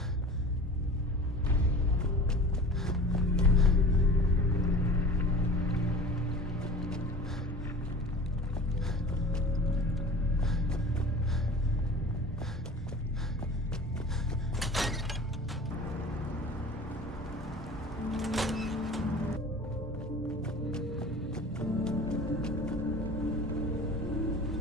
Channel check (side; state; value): both; normal; correlation 0.39